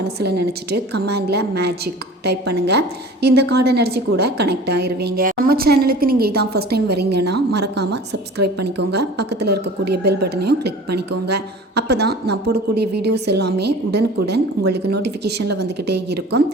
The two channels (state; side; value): normal; both; correlation 0.42